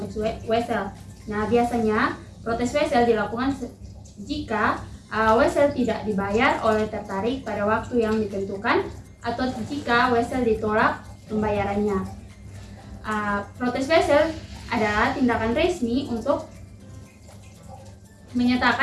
wesel. Nah, biasanya protes wesel dilakukan jika wesel tidak dibayar oleh tertarik pada waktu yang ditentukan atau jika wesel ditolak pembayarannya. Protes wesel adalah tindakan resmi untuk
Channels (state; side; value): identical; both; correlation 1.00